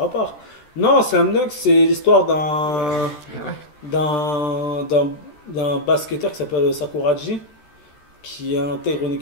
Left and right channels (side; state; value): right; late; 13 ms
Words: à part. Non, Slam Dunk, c'est l'histoire d'un basketteur qui s'appelle Sakuraji, qui intègre une